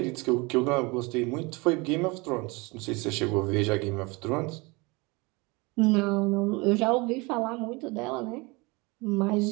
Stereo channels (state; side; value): quieter; left; 26.0 dB